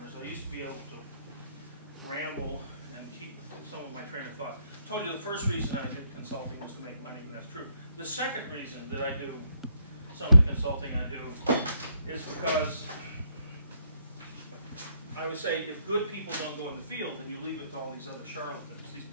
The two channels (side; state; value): both; inverted; correlation -0.72